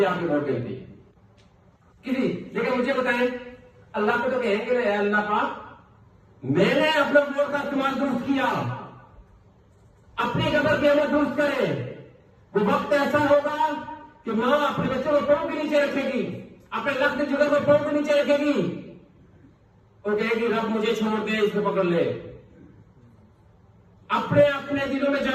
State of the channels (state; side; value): identical; both; correlation 1.00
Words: आपकी वोट गिनती किसी, लेकिन मुझे बताएं अल्लाह को तो कहेंगे ना, अल्लाह पाक मैंने अपने वोट का इस्तेमाल दुरुस्त किया, अपनी कदर कीमत दुरुस्त करे। वो वक्त ऐसा होगा कि मां अपने बच्चों को पांव के नीचे रखेगी, अपने लक्ष्य जुगर को पांव के नीचे रखेगी और कहेगी रब मुझे छोड़ दे, इसको पकड़ ले। अपने अपने दिलों में